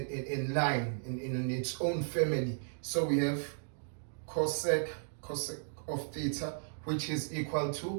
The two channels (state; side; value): silent; left; digital silence